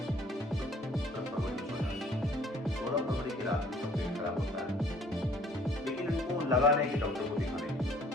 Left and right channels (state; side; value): normal; both; correlation 0.56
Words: 16 फरवरी की रात में तो पेट खराब होता है, लेकिन इनको लगा नहीं कि डॉक्टर को दिखाने